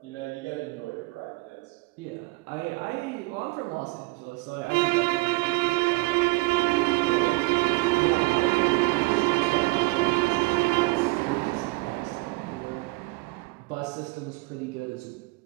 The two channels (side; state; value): left; quieter; 23.7 dB